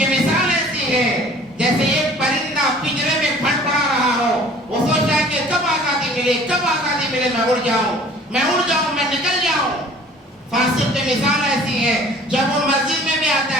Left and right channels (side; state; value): both; normal; correlation 0.50